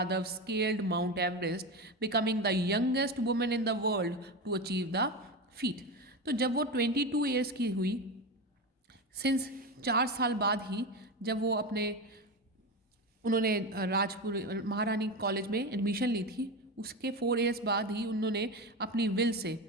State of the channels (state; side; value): normal; both; correlation 0.19